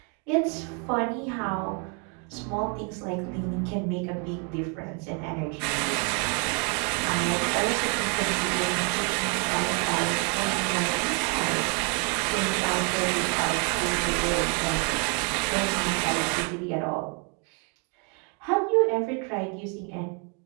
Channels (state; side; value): quieter; left; 35.1 dB